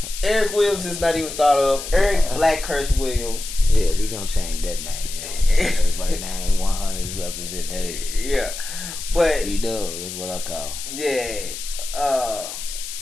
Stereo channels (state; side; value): noise; left; hiss, 9 dB below the sound